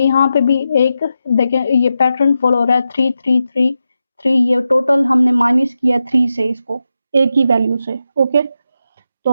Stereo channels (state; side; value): inverted; both; correlation -0.89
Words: यहाँ पे भी एक देखें ये पैटर्न फॉलो हो रहा है 3 3 3 3, ये टोटल हमने माइनस किया 3 से इसको एक ही वैल्यू से, ओके।